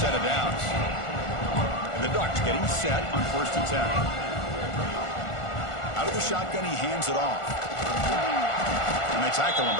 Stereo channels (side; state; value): right; late; 1.4 ms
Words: set of downs. And the Ducks getting set on 1st and 10. Out of the shotgun, he hands it off. And they tackle him,